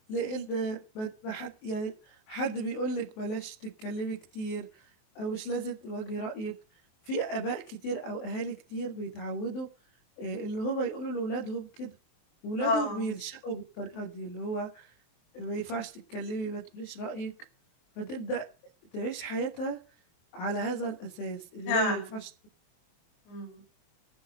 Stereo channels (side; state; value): right; late; 23 ms